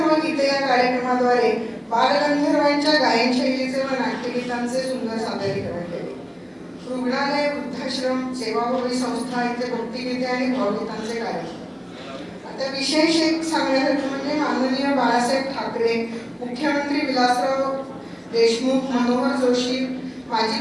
गीते या कार्यक्रमाद्वारे बालगंधर्वांच्या गायनशैलीचे व नाट्यगीतांचे सुंदर सादरीकरण केले. रुग्णालय, वृद्धाश्रम, सेवाभावी संस्था इथे भक्तिगीते आणि भावगीतांचे कार्यक्रम. आता विशेष एक सांगण्यासारखं म्हणजे माननीय बाळासाहेब ठाकरे, मुख्यमंत्री विलासराव देशमुख, मनोहर जोशी,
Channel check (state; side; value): identical; both; correlation 1.00